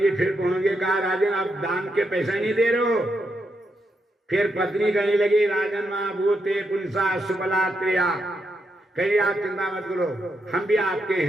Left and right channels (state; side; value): normal; both; correlation 0.82